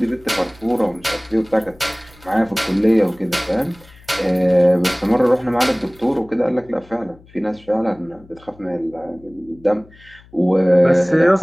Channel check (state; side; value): noise; left; hum, 25 dB below the sound